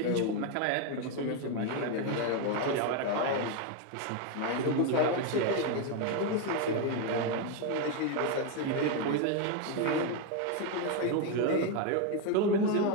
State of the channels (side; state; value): both; different; correlation 0.02